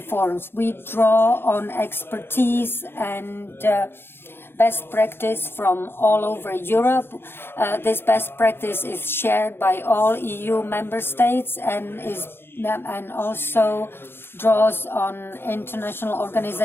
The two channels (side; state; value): right; late; 0.11 ms